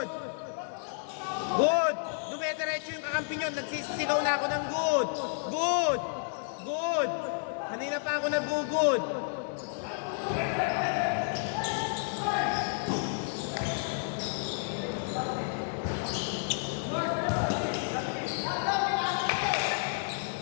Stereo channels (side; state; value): right; silent; 57 dB below the other